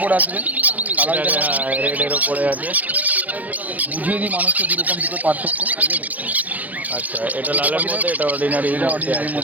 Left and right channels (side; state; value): left; late; 0.079 ms